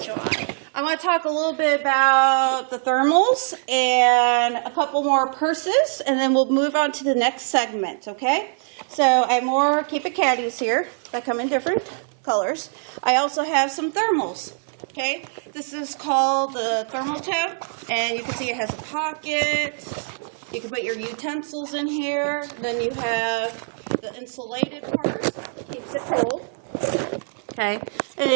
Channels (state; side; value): silent; left; 57 dB below the other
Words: dry. I want to talk a little bit about the thermals and a couple more purses, and then we'll move on to the next segment, okay? So I have more Keep It Caddies here that come in different colors. I also have some thermals, okay? This is called the thermal tote, and you can see it has a pocket. You can put your utensils in here. Then you have the insulated part, keeps it cold, okay? And